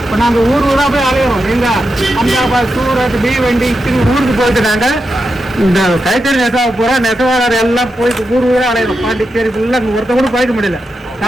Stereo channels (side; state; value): both; normal; correlation 0.87